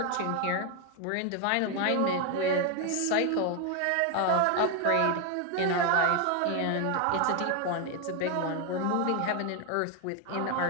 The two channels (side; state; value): both; different; correlation 0.01